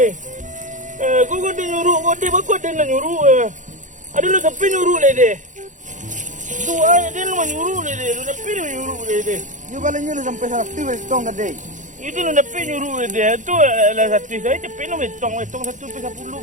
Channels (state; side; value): late; left; 0.36 ms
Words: Kau dia nyuruh, kau dia nak nyuruh. Ada lu sampai nyuruh le dia. Tu dia lu nyuruh le dia. Lu sampai nyuruh le dia. Ini bahalanya lah sampai 100 beto gede. Itu lu sampai nyuruh le dia. Tu lah satu saya cepet lu metong 1